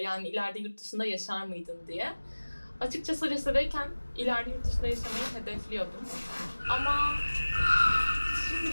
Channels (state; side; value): inverted; both; correlation -1.00